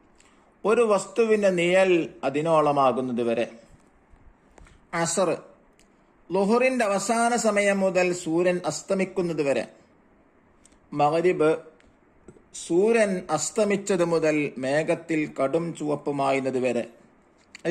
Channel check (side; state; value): both; identical; correlation 1.00